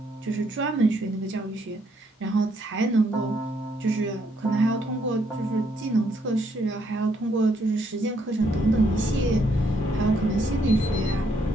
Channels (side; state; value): both; normal; correlation 0.72